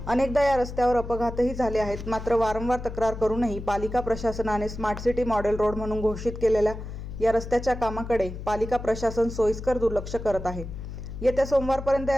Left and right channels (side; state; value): left; noise; hum, 9 dB below the sound